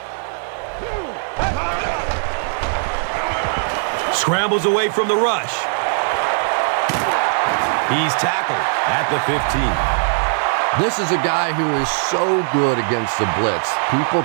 Scrambles away from the rush. He's tackled at the 15. This is a guy who is so good against the blitz. People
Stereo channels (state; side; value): silent; left; digital silence